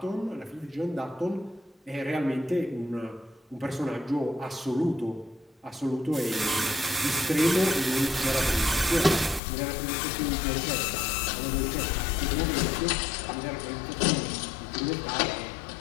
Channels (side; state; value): right; drops out; at 9.4 s